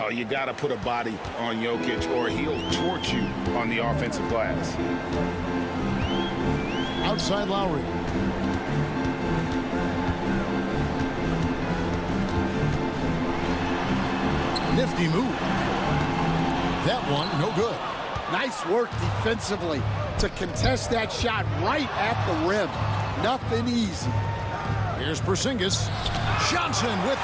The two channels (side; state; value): both; identical; correlation 1.00